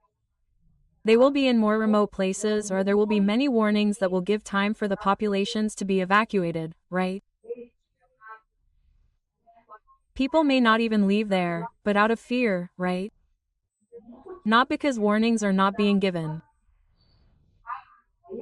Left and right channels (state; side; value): identical; both; correlation 1.00